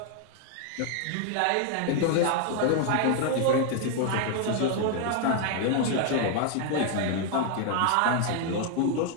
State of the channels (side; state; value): both; different; correlation 0.00